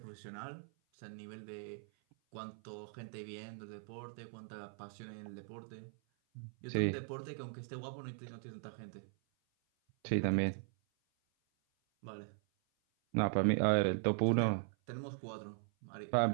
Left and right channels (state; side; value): silent; left; 51 dB below the other